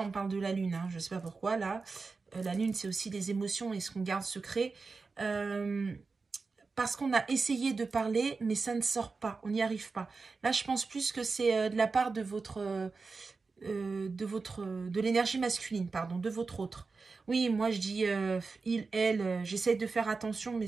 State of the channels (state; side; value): quieter; left; 4.3 dB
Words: on parle de la lune, hein, je sais pas pourquoi là. La lune c'est aussi des émotions et ce qu'on garde secret. Parce qu'on a essayé de parler, mais ça ne sort pas, on n'y arrive pas. Là, je pense plus que c'est de la part de de l'énergie masculine, pardon, de votre autre. Oui, moi je dis il, elle, j'essaie de faire attention, mais